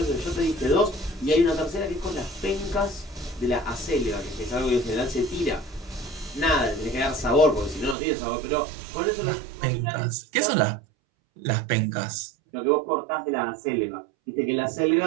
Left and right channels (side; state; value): left; drops out; at 8.0 s